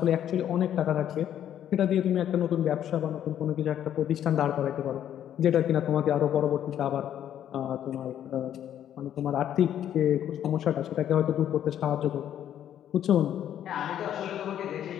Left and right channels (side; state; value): right; quieter; 10.5 dB